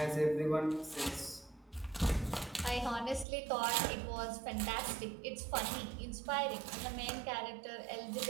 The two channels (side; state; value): left; drops out; at 3.2 s